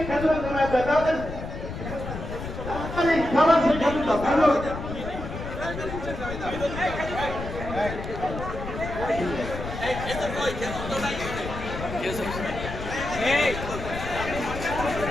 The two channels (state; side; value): noise; left; rumble, 7 dB below the sound